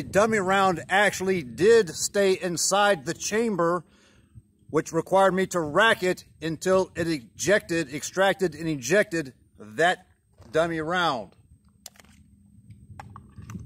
dummy round actually did stay inside the chamber, which required me to rack it until it extracted and ejected that dummy round.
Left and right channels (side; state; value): both; identical; correlation 1.00